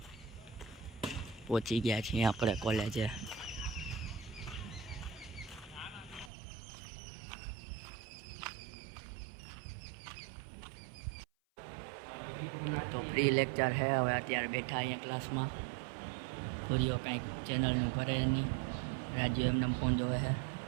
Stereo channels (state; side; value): drops out; left; at 6.3 s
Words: પહોંચી ગયા છીએ આપણે કોલેજે. તો ફ્રી લેક્ચર છે. હવે અત્યારે બેઠા અહીંયા ક્લાસમાં. પૂરીઓ કાંઈક ચેનલનું કરે નહીં. રાજુ એમને ફોન જોવે છે.